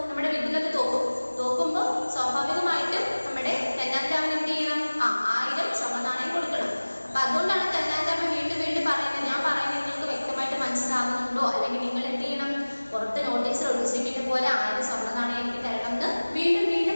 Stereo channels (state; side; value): inverted; both; correlation -1.00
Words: നമ്മുടെ വിദ്യുലത തോക്കും. തോക്കുമ്പോൾ സ്വാഭാവികമായിട്ടും നമ്മുടെ തെന്നാലിരാമൻ എന്ത് ചെയ്യണം? 1000 സ്വർണ്ണ നാണയം കൊടുക്കണം. അപ്പൊ അതുകൊണ്ടാണ് തെന്നാലിരാമൻ വീണ്ടും വീണ്ടും പറയുന്നത്, ഞാൻ പറയുന്നത് നിങ്ങൾക്ക് വ്യക്തമായിട്ട് മനസ്സിലാകുന്നുണ്ടോ, അല്ലെങ്കിൽ നിങ്ങൾ എന്ത് ചെയ്യണം? പുറത്ത് നോട്ടീസിൽ ഒട്ടിച്ചിരിക്കുന്ന പോലെ 1000 സ്വർണ്ണ നാണയം എനിക്ക് തരണം എന്ന് വീണ്ടും